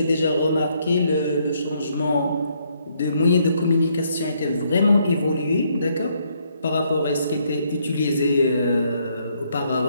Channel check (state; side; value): inverted; both; correlation -0.72